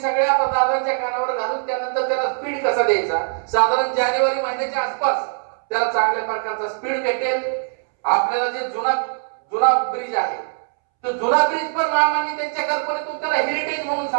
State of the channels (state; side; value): silent; left; 65 dB below the other